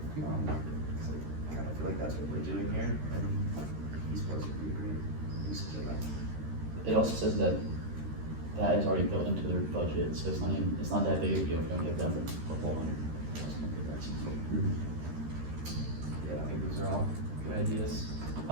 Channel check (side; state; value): left; late; 13 ms